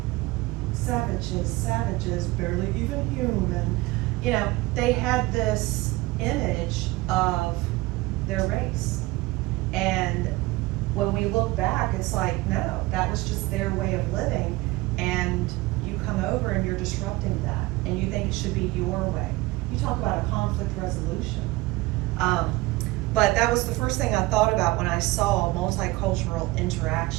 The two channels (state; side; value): quieter; left; 20.4 dB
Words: Savages, barely even human. You know, they had this image of their race. And when we look back, it's like, no, that was just their way of living, and you come over and you're disrupting that, and you think it should be your way. You talk about a conflict resolution. But that was the first thing I thought about when I saw multicultural